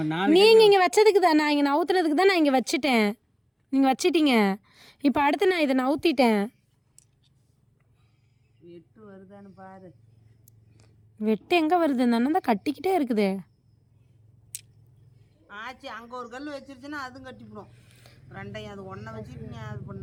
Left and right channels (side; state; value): both; identical; correlation 1.00